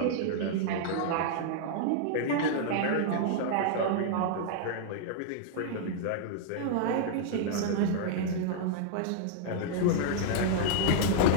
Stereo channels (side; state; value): both; different; correlation -0.01